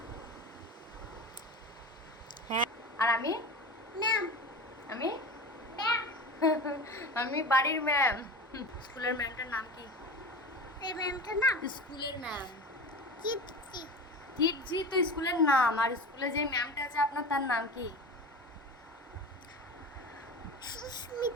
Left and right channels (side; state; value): both; normal; correlation 0.30